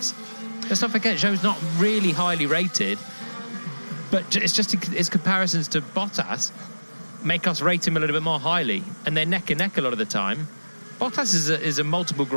Let's not forget, Zhou's not really highly rated, but it's just his comparisons to Bottas make us rate him a little bit more highly, and they're neck and neck a lot of the time. Bottas is a multiple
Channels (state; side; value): inverted; both; correlation -1.00